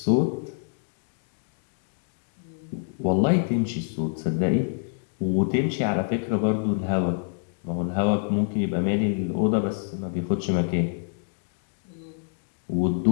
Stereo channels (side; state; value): right; silent; digital silence